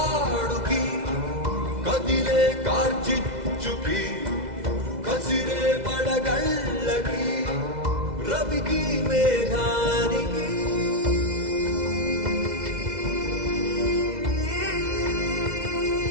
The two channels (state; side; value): late; left; 2.0 ms